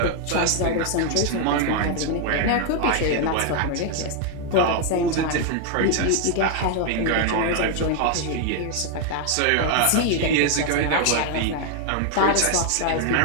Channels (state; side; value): different; both; correlation 0.00